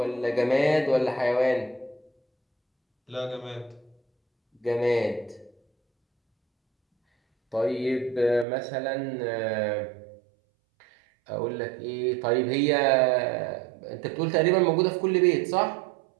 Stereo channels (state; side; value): drops out; left; at 8.5 s